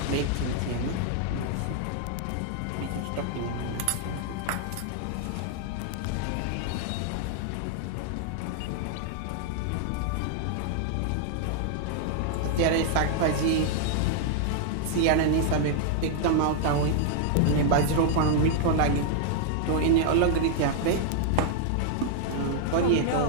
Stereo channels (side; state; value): both; different; correlation 0.00